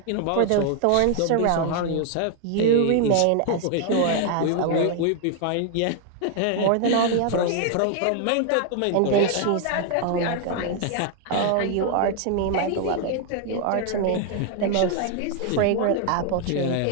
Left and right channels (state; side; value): different; both; correlation 0.00